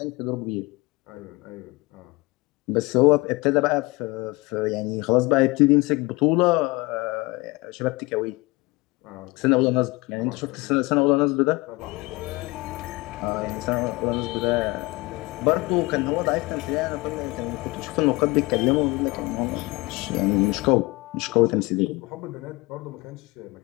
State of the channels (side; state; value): right; quieter; 23.4 dB